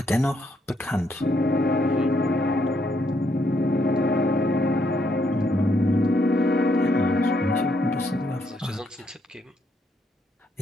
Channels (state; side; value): normal; both; correlation 0.74